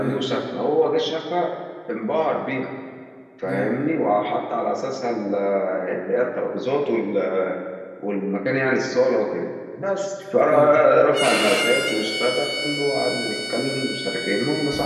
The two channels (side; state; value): both; identical; correlation 1.00